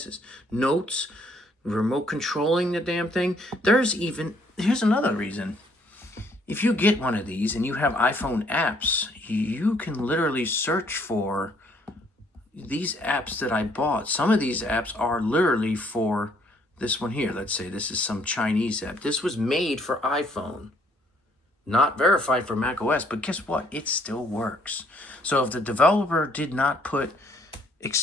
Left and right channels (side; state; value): both; normal; correlation 0.65